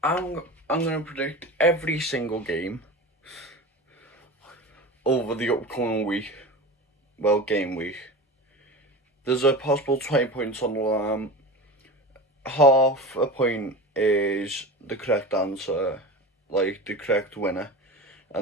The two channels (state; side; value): normal; both; correlation 0.30